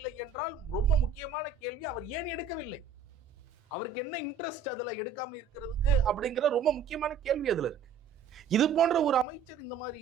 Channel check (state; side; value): quieter; left; 6.1 dB